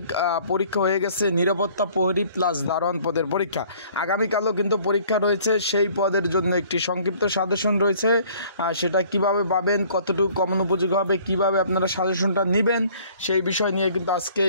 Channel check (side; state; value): both; inverted; correlation -0.56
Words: পরীক্ষা হয়ে গেছে। নিরাপত্তা প্রহরী প্লাস দারোয়ান পদের পরীক্ষা। আগামীকালও কিন্তু পরীক্ষা রয়েছে। সেই পদের জন্য একটি সংক্ষিপ্ত সাজেশন রয়েছে। সেটা কিভাবে পাবেন, কতটুকু কমন উপযোগী হবে, কিভাবে আপনারা সাজেশনটা নেবেন, সেই বিষয় নিয়ে কিন্তু আজকে